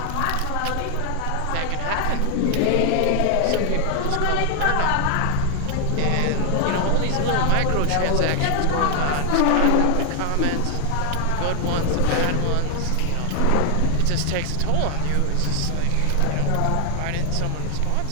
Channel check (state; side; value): different; both; correlation 0.00